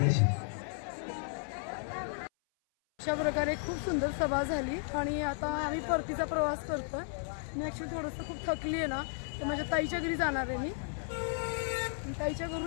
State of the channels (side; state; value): right; silent; 55 dB below the other